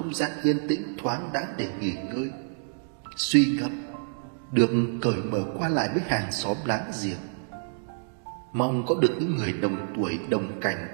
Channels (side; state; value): left; silent; digital silence